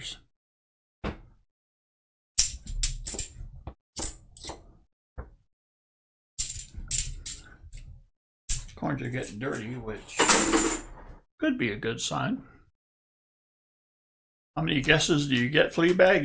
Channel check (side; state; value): both; identical; correlation 1.00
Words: Coins are getting dirty, which could be a good sign. How many guesses do you get, Fleabag?